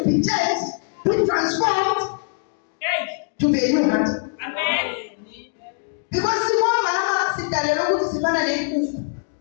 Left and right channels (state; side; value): silent; right; 64 dB below the other